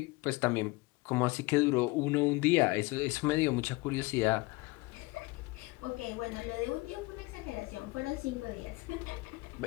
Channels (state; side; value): quieter; right; 23.3 dB